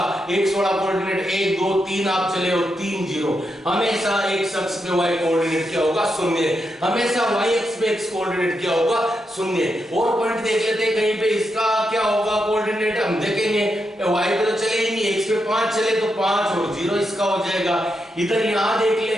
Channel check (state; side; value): normal; both; correlation 0.84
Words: एक्स वाला कोऑर्डिनेट 1 2 3 आप चले हो 3 0, हमेशा एक्स अक्ष पे वाई कोऑर्डिनेट क्या होगा 0, हमेशा वाई अक्ष पे एक्स कोऑर्डिनेट क्या होगा 0। और पॉइंट देख लेते हैं, कहीं पे इसका क्या होगा कोऑर्डिनेट, हम देखेंगे वाई पे तो चले ही नहीं, एक्स पे 5 चले तो 5 और 0 इसका हो जाएगा। इधर यहां देख ले,